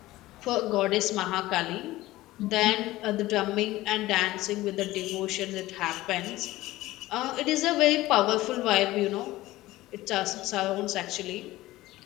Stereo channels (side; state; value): right; quieter; 17.4 dB